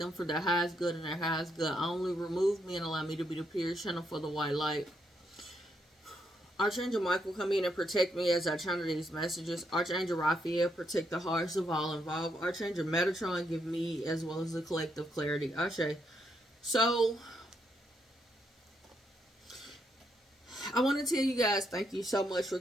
for their highest good and their highest good. Only remove me and allow me to be the pure channel for the white light. Archangel Michael, come in and protect me as I channel these messages. Archangel Raphael, protect the hearts of all involved. Archangel Metatron, give me as well as the collective clarity. Ashe. So, I want to tell you guys thank you so much for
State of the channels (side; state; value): both; normal; correlation 0.77